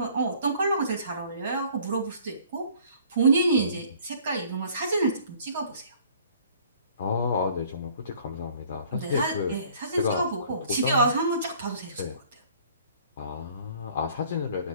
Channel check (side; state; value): both; inverted; correlation -0.55